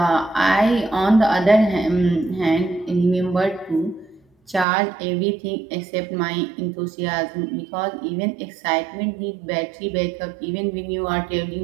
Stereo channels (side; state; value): left; drops out; at 4.7 s